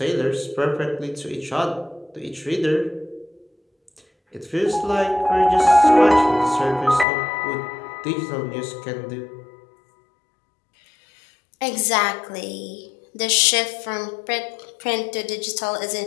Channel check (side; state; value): right; drops out; at 7.1 s